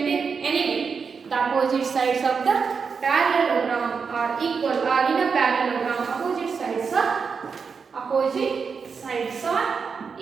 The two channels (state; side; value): quieter; left; 5.6 dB